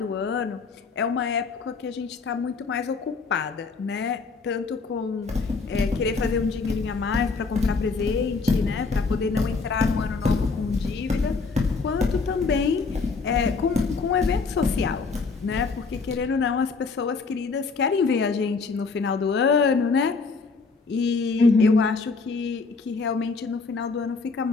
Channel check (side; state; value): right; quieter; 4.5 dB